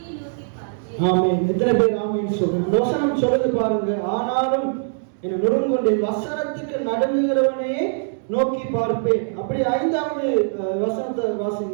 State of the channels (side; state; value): left; silent; digital silence